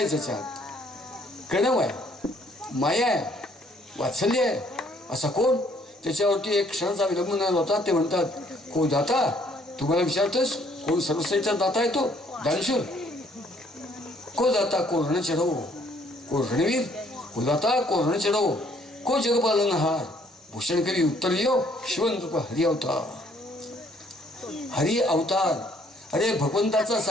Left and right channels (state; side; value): normal; both; correlation 0.64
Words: ज्याच्यात कणव आहे, माया आहे, वात्सल्य आहे. असा कोण? त्याच्यावरती एक क्षणाचा विलंब न होता ते म्हणतात, को दाता. तुम्हाला विचारतोस कोण सर्वश्रेष्ठ दाता आहे? तो दानशूर. को दाता को रण चढवो, को रणवीर, को दाता को रण चढवो, को जगपालनहार. भूषण कवी उत्तर दियो शिवंत हरि अवतार. हरि अवतार, अरे भगवंताचा